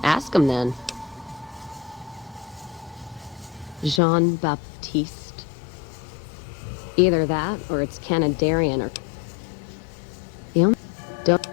Ask him then. Jean-Baptiste. Either that, or it's Canadarian, or... The only... Don't...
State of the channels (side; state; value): right; drops out; at 4.0 s